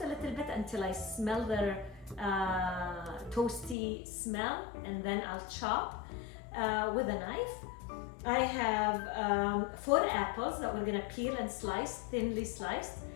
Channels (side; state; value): right; drops out; at 3.8 s